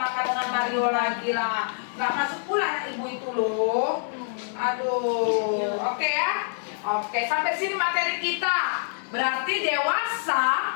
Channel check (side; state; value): right; silent; digital silence